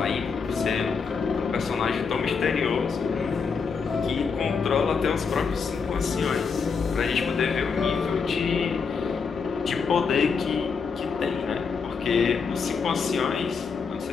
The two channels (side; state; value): right; quieter; 5.5 dB